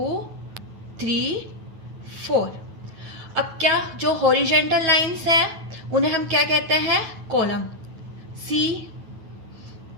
3 4. अब क्या जो हॉरिजेंटल लाइंस है उन्हें हम क्या कहते हैं, column.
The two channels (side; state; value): left; late; 9.2 ms